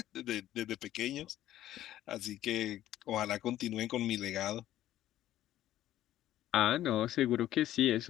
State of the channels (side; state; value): right; quieter; 13.2 dB